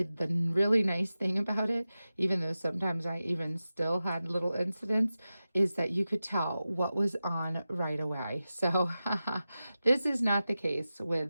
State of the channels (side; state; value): both; inverted; correlation -0.94